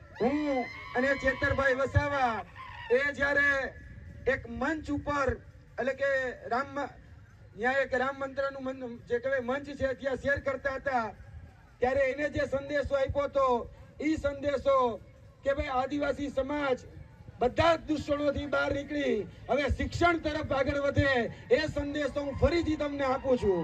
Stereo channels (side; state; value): both; identical; correlation 1.00